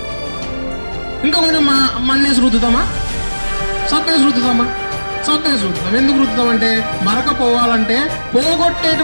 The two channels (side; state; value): both; inverted; correlation -1.00